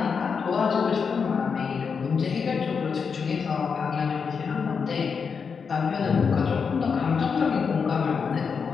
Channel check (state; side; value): quieter; right; 5.9 dB